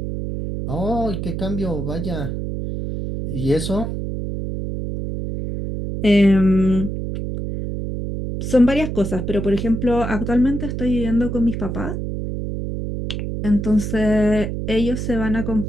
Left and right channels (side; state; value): right; noise; hum, 4 dB below the sound